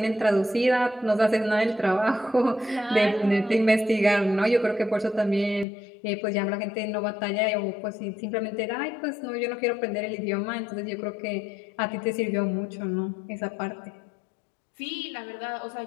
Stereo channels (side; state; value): right; drops out; at 5.7 s